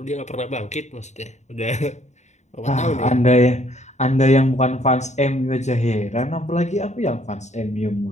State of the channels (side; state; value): right; late; 0.33 ms